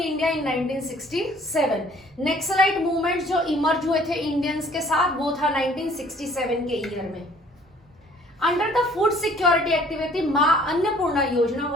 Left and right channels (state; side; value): normal; both; correlation 0.56